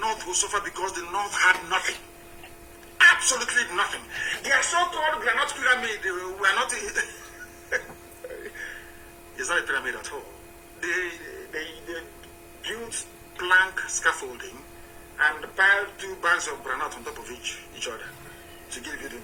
will suffer because the North had nothing. Absolutely nothing. Their so-called granite pyramid were not... It's not a pyramid at all. They built plank scaffolding and piled 2 bags of granite on top of each other to give you the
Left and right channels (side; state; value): both; identical; correlation 1.00